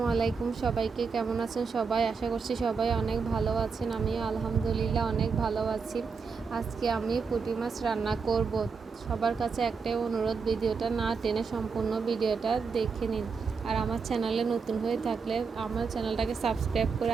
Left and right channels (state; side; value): quieter; left; 5.3 dB